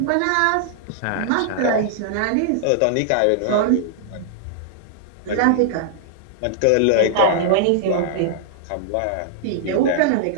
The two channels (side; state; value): both; different; correlation -0.01